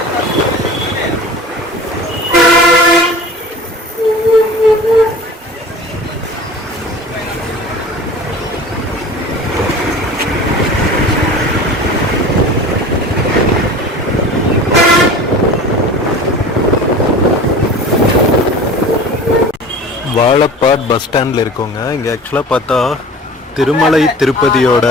வாழப்பாட் பஸ் ஸ்டாண்டில் இருக்கோங்க. இங்கே ஆக்சுவலாக பார்த்தா திருமலை திருப்பதியோட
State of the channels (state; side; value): normal; both; correlation 0.39